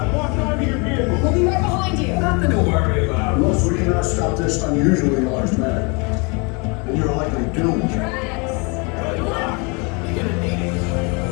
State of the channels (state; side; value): quieter; right; 31.4 dB